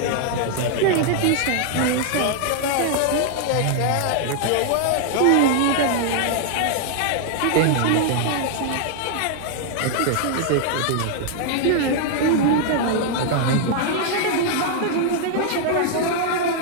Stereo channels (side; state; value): both; different; correlation 0.00